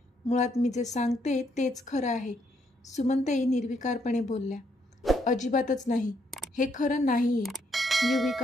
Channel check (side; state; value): both; normal; correlation 0.73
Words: मुळात मी जे सांगते तेच खरं आहे. सुमनताई निर्विकारपणे बोलल्या. अजिबातच नाही, हे खरं नाही आहे,